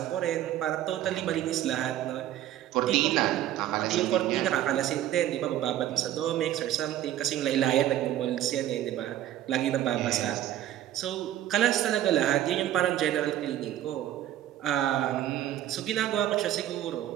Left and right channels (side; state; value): left; quieter; 12.5 dB